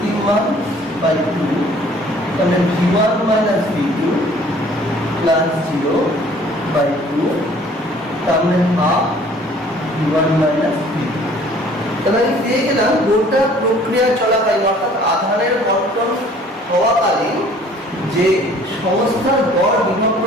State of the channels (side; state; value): both; normal; correlation 0.54